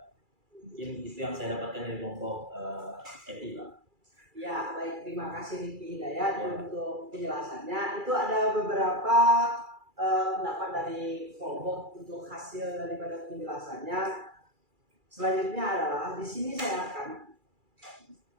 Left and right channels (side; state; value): left; late; 2.3 ms